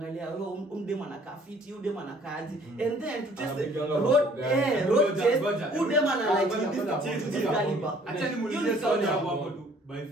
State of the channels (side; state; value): both; normal; correlation 0.57